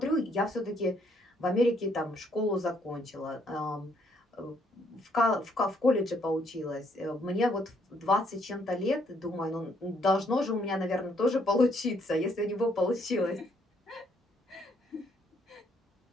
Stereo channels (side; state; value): both; normal; correlation 0.69